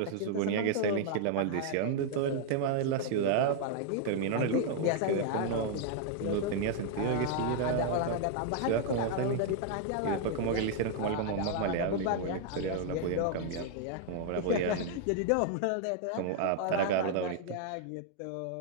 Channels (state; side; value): different; both; correlation 0.00